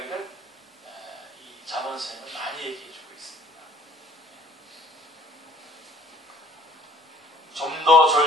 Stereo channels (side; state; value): both; normal; correlation 0.55